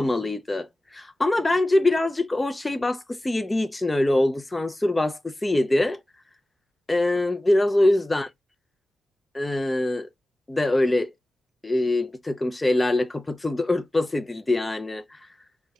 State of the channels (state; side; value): normal; both; correlation 0.96